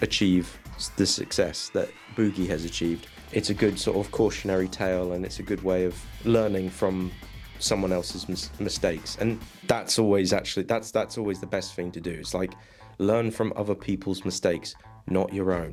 achieve the success that Boogie has achieved, it's a good sort of cautionary tale, and it's a good way of learning from someone else's mistakes. And that's always that's always the best thing to do. It's like, learn from other people's mistakes, not your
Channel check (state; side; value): identical; both; correlation 1.00